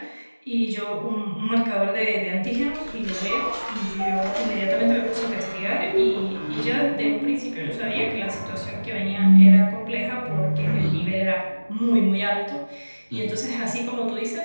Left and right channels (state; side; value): inverted; both; correlation -1.00